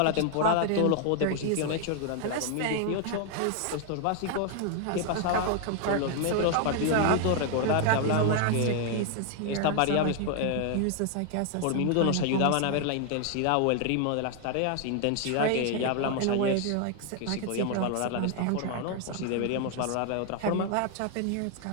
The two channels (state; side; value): different; both; correlation 0.00